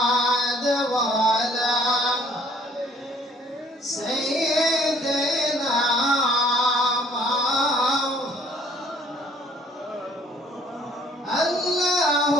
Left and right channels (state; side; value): normal; both; correlation 0.59